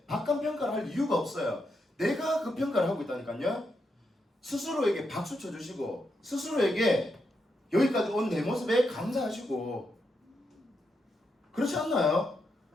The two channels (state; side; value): normal; both; correlation 0.82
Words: 박한 평가를 할 이유가 없어요. 내가 그 평가를 하고 있다니까요. 스스로에게 박수 쳐주시고 스스로에게 여기까지 온 내 모습에 감사하시고 그렇지 않나요?